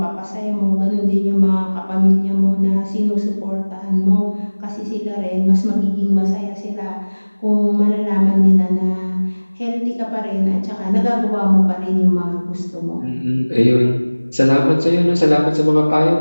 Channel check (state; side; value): inverted; both; correlation -1.00